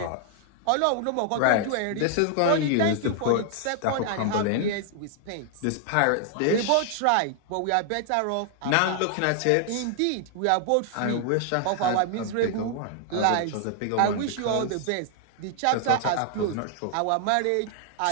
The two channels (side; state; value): both; different; correlation 0.00